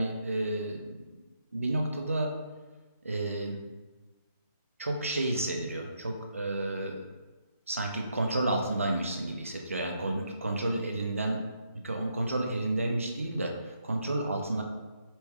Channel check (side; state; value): both; inverted; correlation -0.77